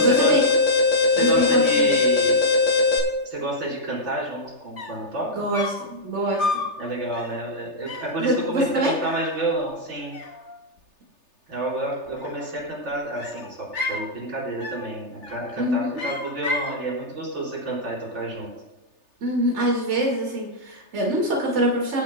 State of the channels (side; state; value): left; late; 3.3 ms